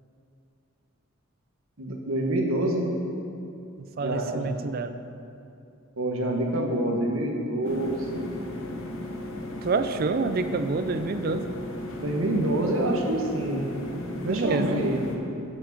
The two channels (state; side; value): normal; both; correlation 0.32